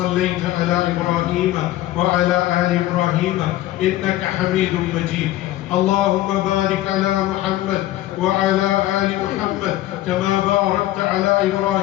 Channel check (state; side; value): quieter; right; 15.0 dB